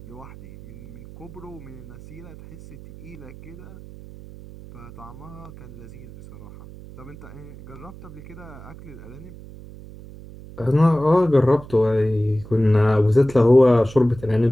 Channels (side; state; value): right; noise; hum, 17 dB below the sound